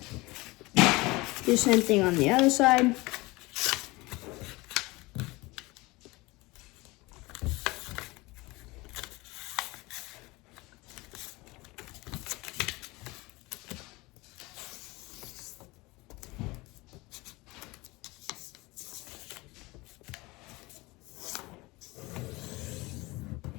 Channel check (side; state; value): right; quieter; 22.5 dB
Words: Do the same thing on the other side.